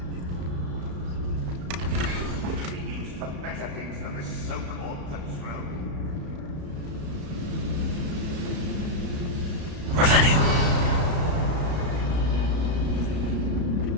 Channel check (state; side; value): late; left; 34 ms